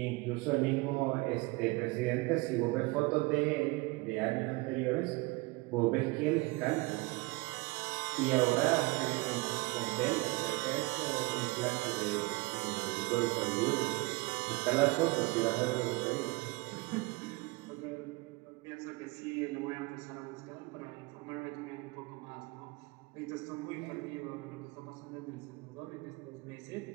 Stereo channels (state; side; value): quieter; left; 24.4 dB